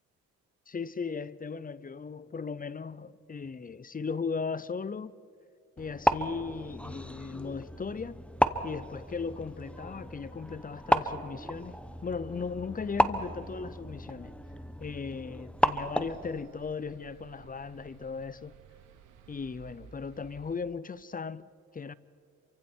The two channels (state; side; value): normal; both; correlation 0.74